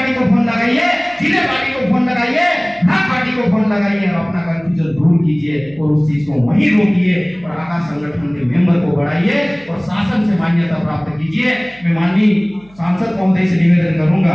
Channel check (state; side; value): noise; right; hum, 28 dB below the sound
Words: को फोन लगाइए, जिले पार्टी को फोन लगाइए, भाग पार्टी को फोन लगाइए और अपना कंफ्यूजन दूर कीजिए और उस चीज को वहीं रोकिए और आकाश संगठन के मेंबर को बढ़ाइए और शासन से मान्यता प्राप्त कीजिए। मैं माननीय सांसद महोदय से निवेदन करूंगा